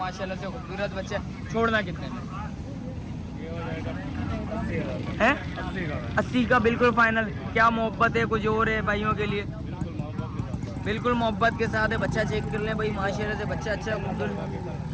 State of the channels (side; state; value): both; identical; correlation 1.00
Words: से खूबसूरत बच्चा। छोड़ना कितने में है? 80 का बिल्कुल फाइनल। क्या मोहब्बत है कुछ और है भाइयों के लिए? बिल्कुल मोहब्बत के साथ है। बच्चा चेक कर लें भाई माशाल्लाह से। बच्चा अच्छा खूबसूरत